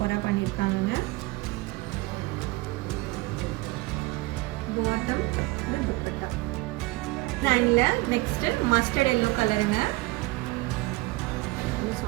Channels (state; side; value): quieter; left; 21.9 dB